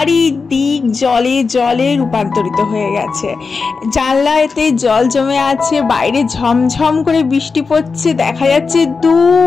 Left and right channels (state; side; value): quieter; right; 4.7 dB